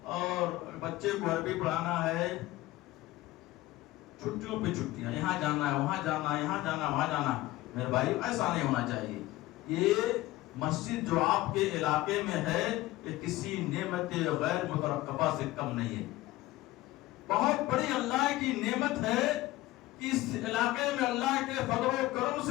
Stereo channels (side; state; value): right; quieter; 17.4 dB